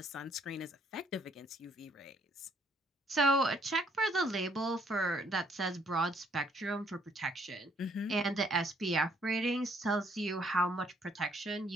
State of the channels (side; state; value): both; normal; correlation 0.67